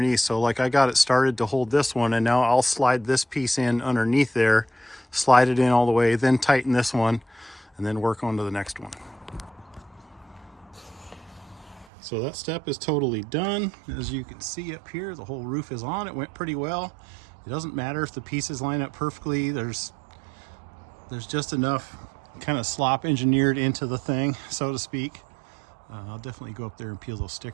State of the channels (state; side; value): drops out; left; at 11.9 s